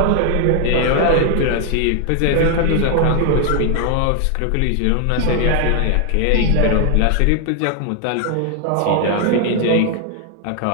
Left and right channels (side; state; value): both; different; correlation 0.01